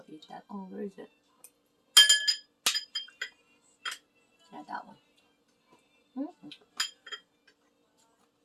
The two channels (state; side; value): identical; both; correlation 1.00